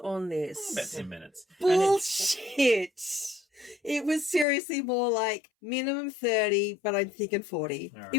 this? About 10 minutes. Bullshit. It was seriously more like minimum 30, but I'm thinking 40. Right.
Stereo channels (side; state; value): right; drops out; at 4.5 s